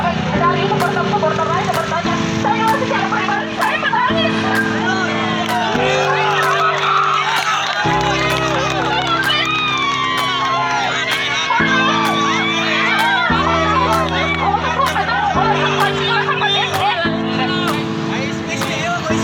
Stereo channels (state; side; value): identical; both; correlation 1.00